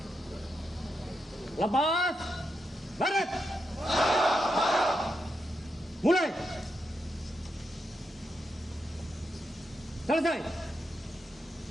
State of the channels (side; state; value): both; normal; correlation 0.84